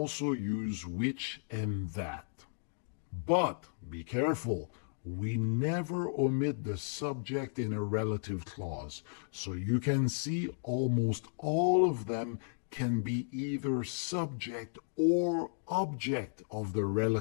use which and that. But be careful, we never omit the subject in a relative clause. So you can see almost all of them can be either subject or object of the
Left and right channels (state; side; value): silent; right; digital silence